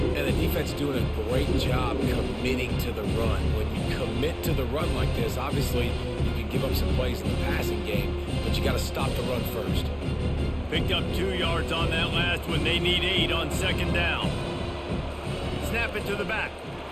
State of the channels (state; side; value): identical; both; correlation 1.00